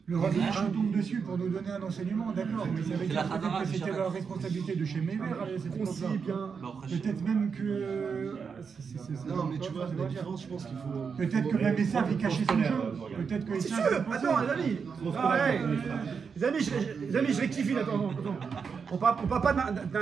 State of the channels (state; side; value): quieter; left; 5.9 dB